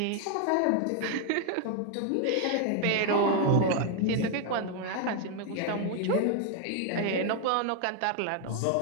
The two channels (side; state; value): both; different; correlation 0.00